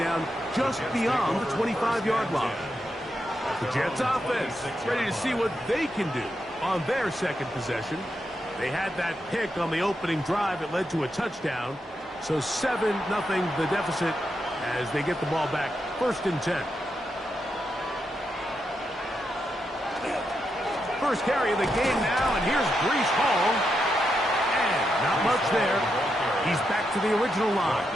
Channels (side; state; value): both; normal; correlation 0.84